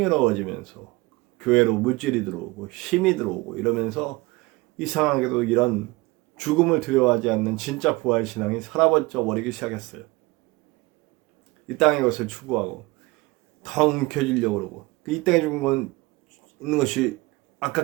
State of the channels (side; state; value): left; quieter; 22.2 dB